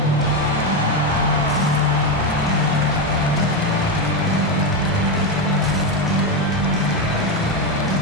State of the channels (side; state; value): both; normal; correlation 0.10